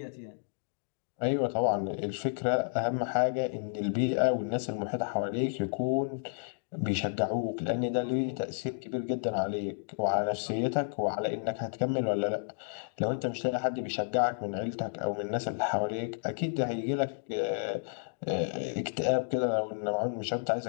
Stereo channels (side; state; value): right; silent; digital silence